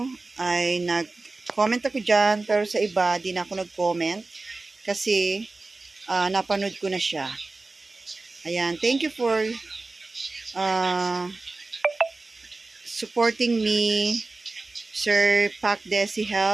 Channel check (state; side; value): quieter; left; 3.4 dB